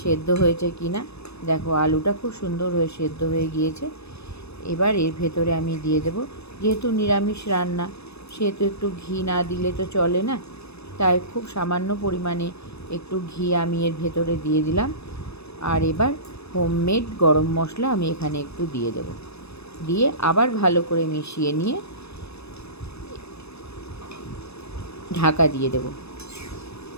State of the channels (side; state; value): right; late; 0.79 ms